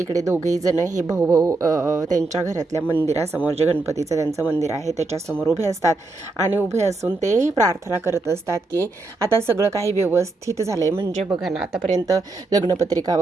दोघेही जण हे भाऊ त्यांच्या घरातल्या मंदिरासमोर, जे गणपतीचं त्यांचं मंदिर आहे त्याच्यासमोर उभे असतात आणि उभे असून ते प्रार्थना करत असतात की आता सगळं काही व्यवस्थित झालं आहे. म्हणजे बघा ना, आतापर्यंत लग्नपत्रिका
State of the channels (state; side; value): quieter; left; 3.3 dB